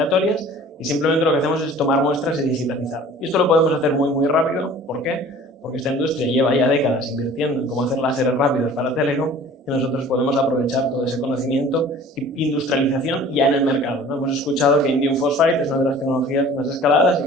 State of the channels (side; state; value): both; normal; correlation 0.47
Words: y simplemente lo que hacemos es tomar muestras y digitalizar. Y esto lo podemos hacer muy, muy rápido. ¿Por qué? Porque esta industria lleva ya décadas invirtiendo en cómo hacer láseres rápidos para Telecom, y nosotros podemos aprovechar todo ese conocimiento y industrialización ya en el mercado, ¿no? Hemos escuchado que indium phosphide es una de las tecnologías más escaladas y